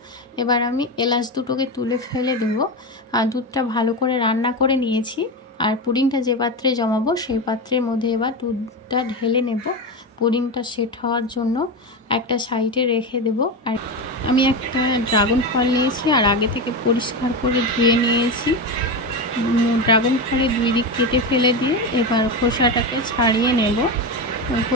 एबार आमी एलाच दुटोके तुले फेले देब और दूधटा भालो करे रान्ना करे निয়েছি। और पुडिंगटा जे पात्रे जमाबो सेई पात्रेर मध्य एबार दूधटा ढेले नेब। पुडिंगटा सेट हওয়ার জন্য একটা সাইডে রেখে দেব। আর আমি একটা ড্রাগন ফল নিয়েছি আর আগে থেকে পরিষ্কার করে ধুয়ে নিয়েছি। ড্রাগন ফলের দুই দিক কেটে ফেলে দিয়ে এবার খোসাটাকে ছাড়িয়ে নেব।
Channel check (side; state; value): both; normal; correlation 0.17